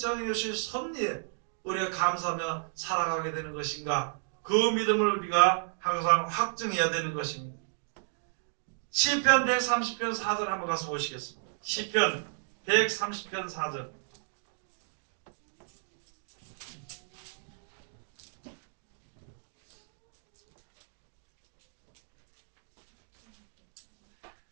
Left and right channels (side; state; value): left; silent; digital silence